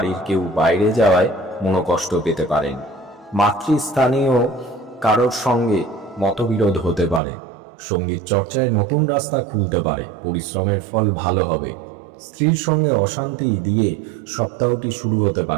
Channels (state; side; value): drops out; left; at 7.2 s